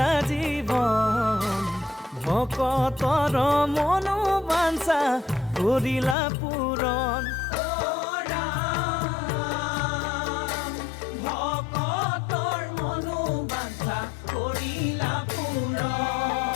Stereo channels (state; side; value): drops out; right; at 6.2 s